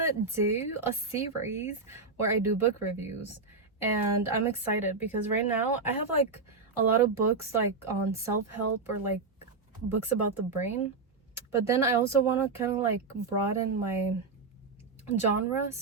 do a series where I do book reviews, and I'm excited because right now I have like a lot of books like on self-help or like books about the brain, but then I also want to kind of like broaden my genre,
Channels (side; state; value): left; quieter; 4.2 dB